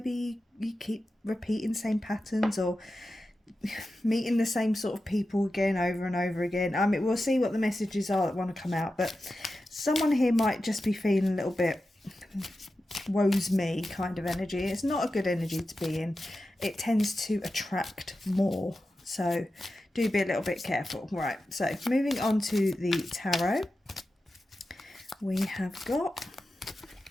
you keep repeating same patterns or meeting the same sort of people again over and over again. I mean, we'll see what the messages are that want to come out, but someone here might just be feeling a little bit woe's me kind of energy. It's not a good energy to be in. It tends to attract more, so do be a little bit careful. Right, so moving on to the tarot, we have got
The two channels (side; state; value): both; normal; correlation 0.92